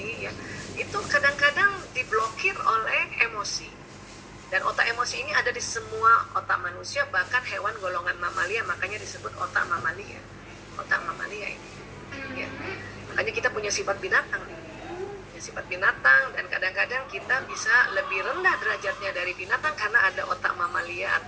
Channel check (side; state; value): both; identical; correlation 1.00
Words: ya, itu kadang-kadang diblokir oleh emosi. Dan otak emosi ini ada di semua otak manusia, bahkan hewan golongan mamalia, makanya disebut otak mamalia. Otak mamalia ini. Ya. Makanya kita punya sifat binatang nih. Ya, sifat binatang, dan kadang-kadang kita bisa lebih rendah derajatnya dari binatang karena ada otak mamalia